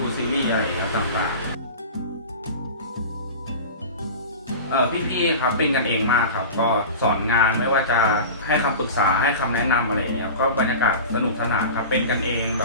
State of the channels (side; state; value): both; inverted; correlation -0.33